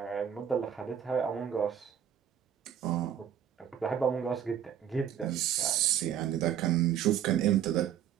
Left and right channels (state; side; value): quieter; left; 9.2 dB